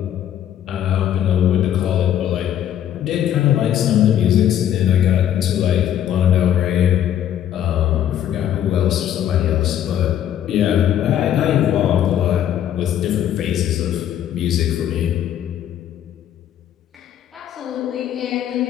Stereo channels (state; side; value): quieter; right; 10.5 dB